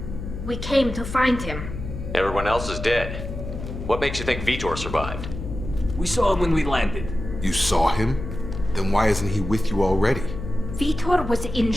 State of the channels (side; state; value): left; noise; hum, 8 dB below the sound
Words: We came to find him. Everyone else is dead. What makes you think Vitor survived? We saw him when we landed. You saw him? Then why isn't he with you already? Vitor was